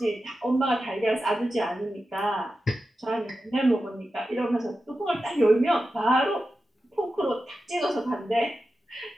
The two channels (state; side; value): normal; both; correlation 0.92